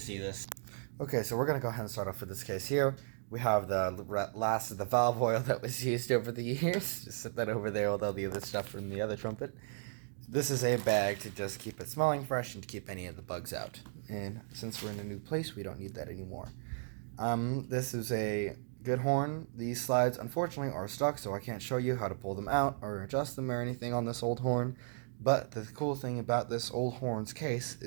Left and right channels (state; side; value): silent; left; digital silence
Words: this. Okay, so we're going to go ahead and start off with this case here. We have the last of the valve oil that was used over the years. Just set that over there with all the other stuff from the other trumpet. This is a bag to just keep it smelling fresh and to keep any of the bugs out. And since we're in a new place, we don't need that anymore. This is a good horn. These slides, unfortunately, are stuck, so I can't show you how to pull them out or adjust them or anything on this old horn. But the cool thing about this old horn's case